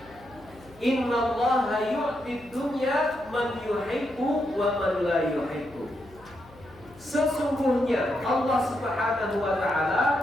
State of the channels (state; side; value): noise; left; hum, 23 dB below the sound